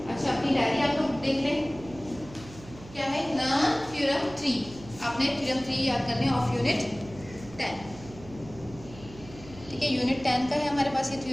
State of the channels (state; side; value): noise; right; hum, 18 dB below the sound